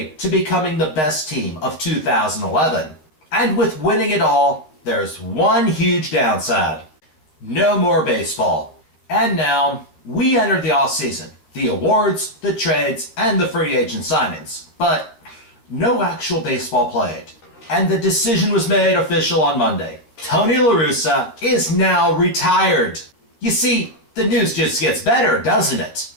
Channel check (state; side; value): late; right; 13 ms